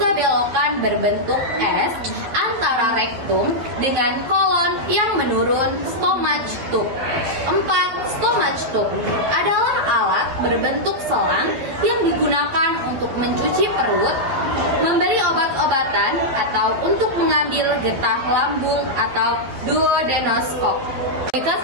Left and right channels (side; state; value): left; late; 12 ms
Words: belokan berbentuk S antara rektum dengan kolon yang menurun stomach tube. 4. Stomach tube adalah alat berbentuk selang yang digunakan untuk mencuci perut, memberi obat-obatan, atau untuk mengambil getah lambung atau duodenoskop.